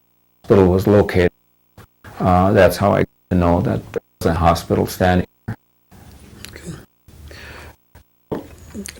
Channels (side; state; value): both; identical; correlation 1.00